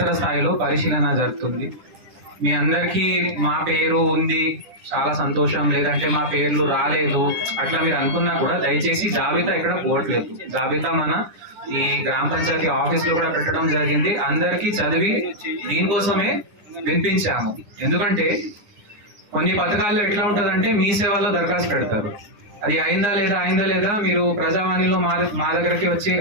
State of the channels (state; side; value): late; left; 10 ms